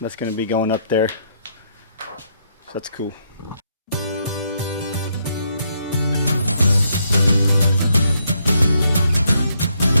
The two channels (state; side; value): inverted; both; correlation -0.75